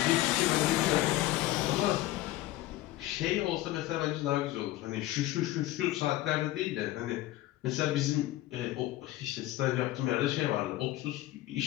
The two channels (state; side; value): quieter; right; 16.1 dB